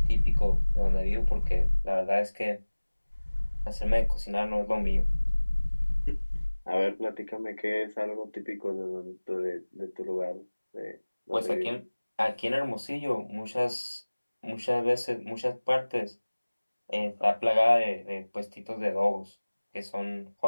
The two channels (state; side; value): inverted; both; correlation -1.00